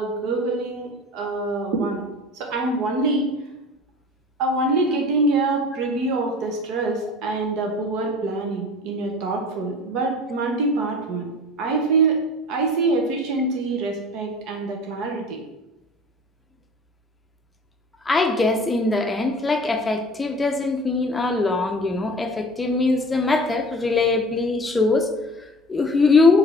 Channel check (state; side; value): normal; both; correlation 0.41